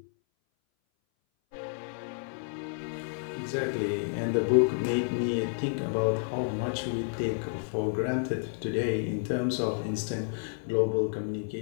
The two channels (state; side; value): silent; right; 58 dB below the other